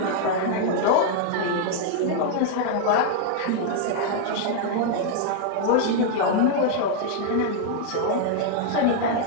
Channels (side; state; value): both; different; correlation 0.00